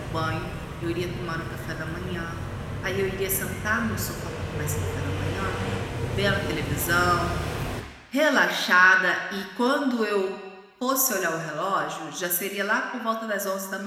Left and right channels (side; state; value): both; identical; correlation 1.00